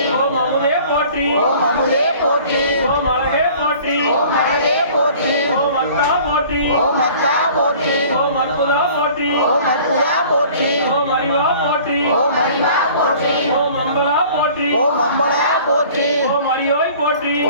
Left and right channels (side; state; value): both; inverted; correlation -0.49